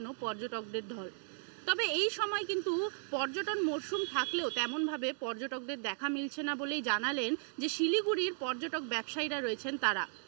পর্যটকদের ঢল। তবে এই সময় কিন্তু পর্যটন মরশুম থাকলেও তেমনভাবে পর্যটকদের দেখা মিলছে না বলেই জানালেন যে শিলিগুড়ির পর্যটক ব্যবসায়ীরা রয়েছেন তারা।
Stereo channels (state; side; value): silent; left; digital silence